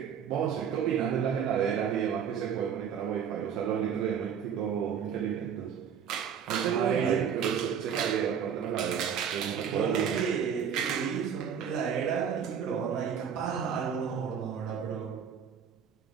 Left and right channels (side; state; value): left; quieter; 7.7 dB